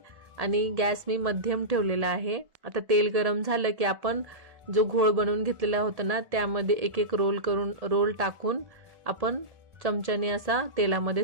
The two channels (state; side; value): late; left; 1.8 ms